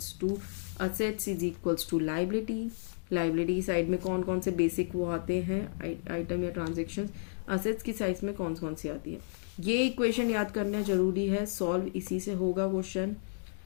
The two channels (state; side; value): silent; right; digital silence